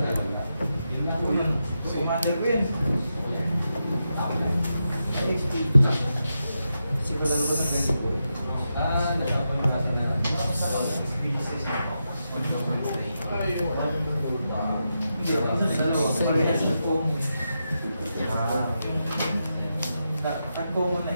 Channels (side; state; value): both; inverted; correlation -0.87